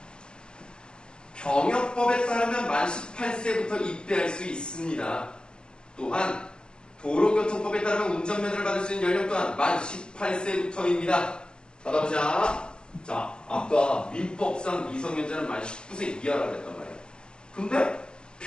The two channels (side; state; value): right; late; 0.047 ms